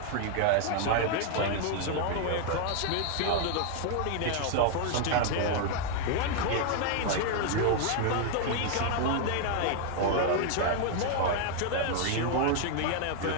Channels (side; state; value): both; different; correlation 0.00